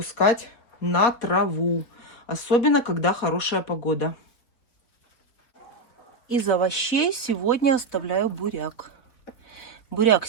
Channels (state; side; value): late; right; 3.9 ms